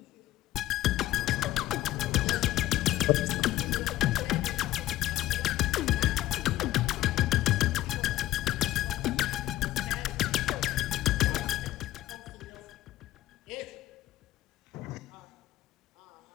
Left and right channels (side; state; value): right; quieter; 14.8 dB